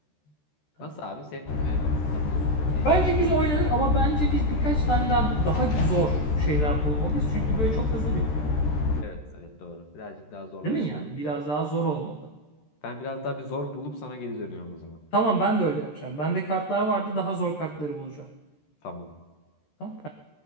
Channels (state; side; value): late; right; 13 ms